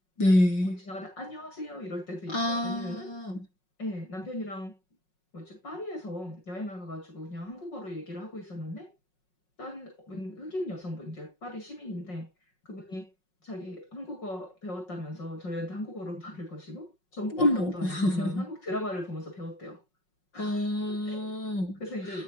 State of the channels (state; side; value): late; right; 5.5 ms